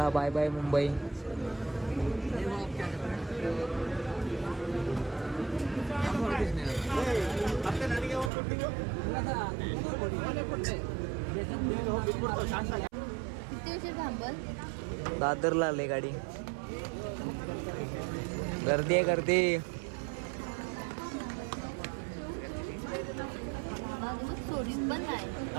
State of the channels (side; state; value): left; drops out; at 8.3 s